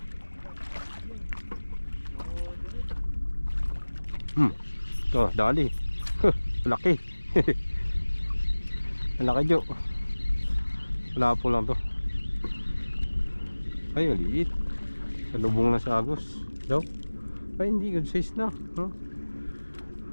To, dali. Laki. Laki Jo. Wala po lang to. Ay, maliit. Salubong na sa agos. Daw. Ay, hindi. Good size na. Huh?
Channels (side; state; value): both; inverted; correlation -1.00